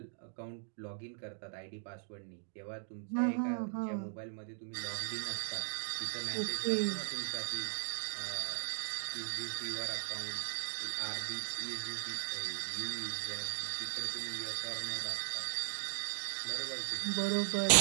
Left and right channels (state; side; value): silent; left; digital silence